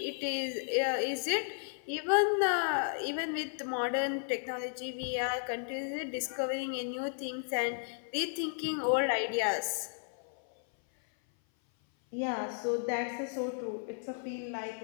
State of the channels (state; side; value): silent; right; 55 dB below the other